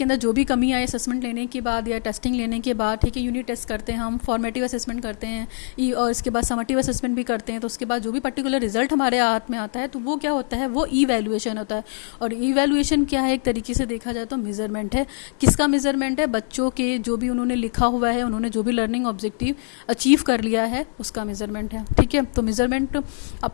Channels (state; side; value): silent; right; 60 dB below the other